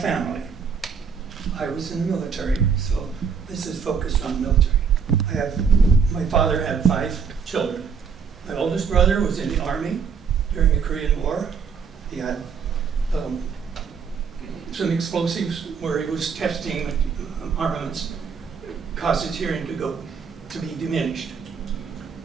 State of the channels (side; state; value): left; quieter; 6.2 dB